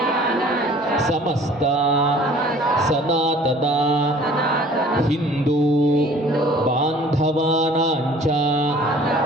ಸಮಸ್ತ ಸನಾತನ ಹಿಂದೂ ಬಾಂಧವಾನಾಂಚ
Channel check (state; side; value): normal; both; correlation 0.50